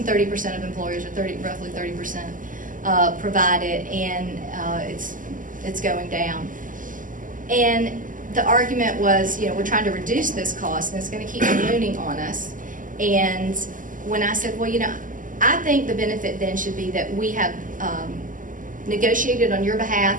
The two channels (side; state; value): left; late; 0.38 ms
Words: 30% of employers, or roughly 30%, provide it, and it's going down. And the argument was, you know, we're trying to reduce this cost, and it's going to keep ballooning on us. And when I said, well, you know, I think the benefit then should be that we have negotiated on your